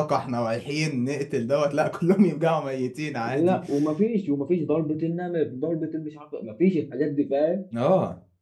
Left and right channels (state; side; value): identical; both; correlation 1.00